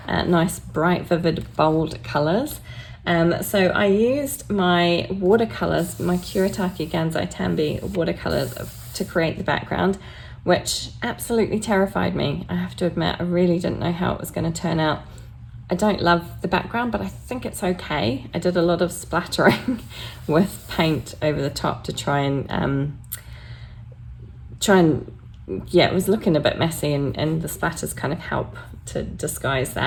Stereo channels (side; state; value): both; identical; correlation 1.00